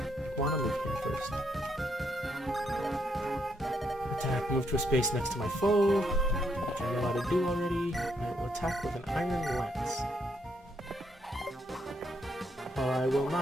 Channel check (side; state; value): both; normal; correlation 0.76